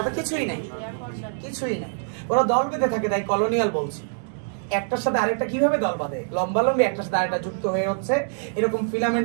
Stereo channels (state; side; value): silent; left; digital silence